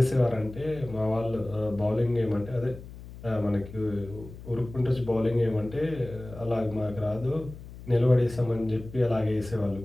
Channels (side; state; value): left; noise; hum, 15 dB below the sound